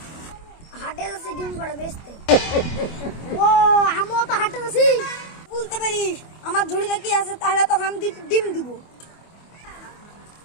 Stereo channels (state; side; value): late; right; 25 ms